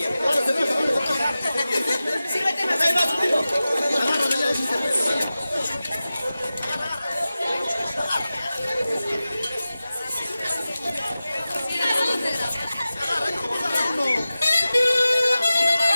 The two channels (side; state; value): both; inverted; correlation -0.95